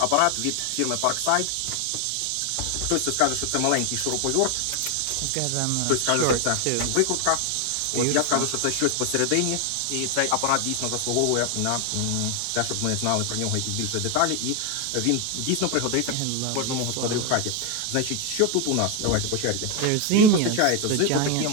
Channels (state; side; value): different; both; correlation 0.01